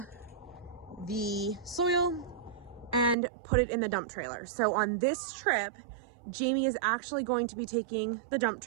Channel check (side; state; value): left; drops out; at 3.2 s